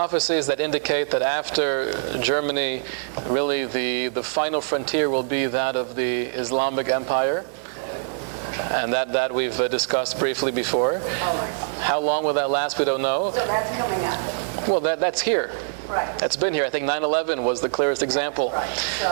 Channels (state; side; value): silent; left; digital silence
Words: that indicate that after Germany, really the final frontier will be that of the Islamic Empire, and that we've discussed briefly before. How long will that last? We don't know. So that's coming up. Well, that's here. Right. That's been here. I think 9/11 was the clearest example. Right.